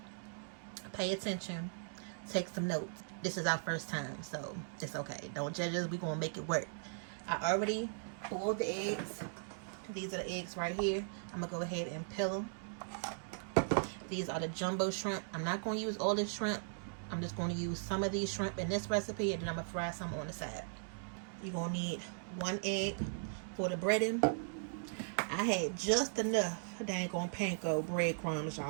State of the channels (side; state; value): left; silent; digital silence